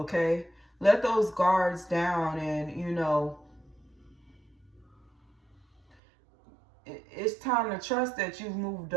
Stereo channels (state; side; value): drops out; left; at 6.0 s